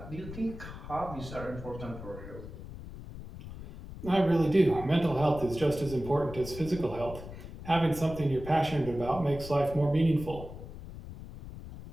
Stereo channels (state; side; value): noise; left; rumble, 12 dB below the sound